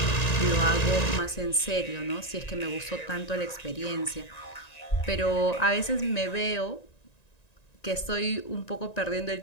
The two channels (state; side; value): late; right; 1.9 ms